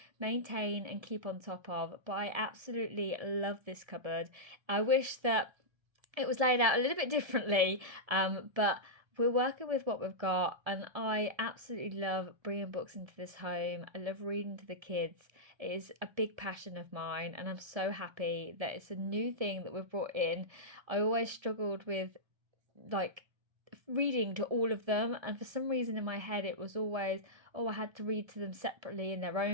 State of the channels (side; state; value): left; late; 1.7 ms